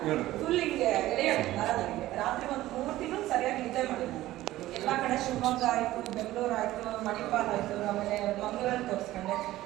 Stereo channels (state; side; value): quieter; left; 15.7 dB